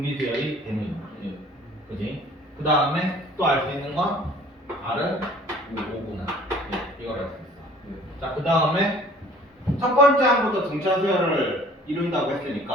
수열이 되는 거야. 그지? 그 다음에 또 알 수 있는 건 R은 5구나. 이걸 알 수 있어. 자, 그 다음에 첫 번째 항부터 등차 수열을 이룬다고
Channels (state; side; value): normal; both; correlation 0.51